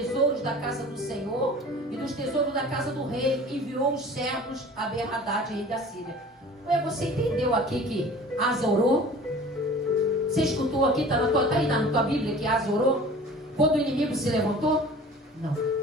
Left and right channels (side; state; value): both; normal; correlation 0.43